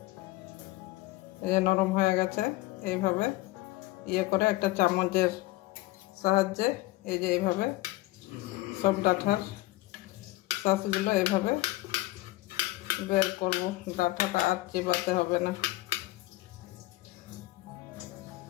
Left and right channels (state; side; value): quieter; right; 18.7 dB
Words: এই যে নরম হয়ে গেছে, এইভাবে ইয়ে করে একটা চামচের সাহায্যে এই যে এইভাবে সব ডাঁটার শাঁসগুলো এইভাবে বের করব। ডাঁটাটা আর চিবাতে হবে না,